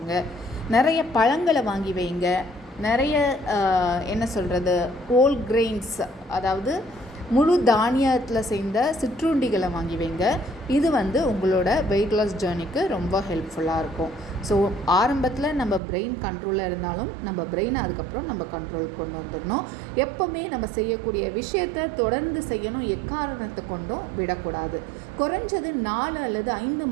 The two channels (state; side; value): drops out; left; at 15.8 s